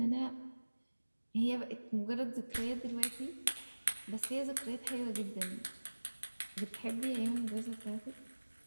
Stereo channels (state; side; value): inverted; both; correlation -1.00